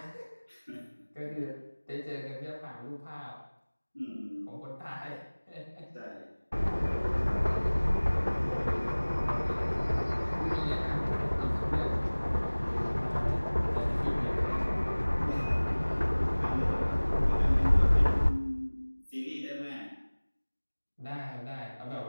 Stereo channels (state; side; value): inverted; both; correlation -1.00